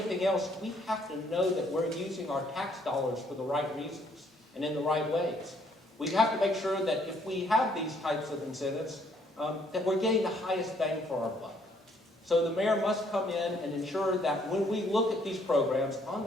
else, we have to know that we're using our tax dollars for the right reasons and in the right ways. We have to make sure that if we have these types of incentives, that we're getting the highest bang for our buck. So the mayor must come in and ensure that when we look at these programs on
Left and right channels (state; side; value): normal; both; correlation 0.66